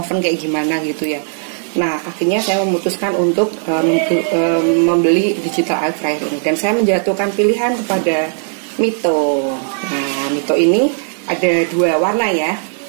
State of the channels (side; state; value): left; silent; digital silence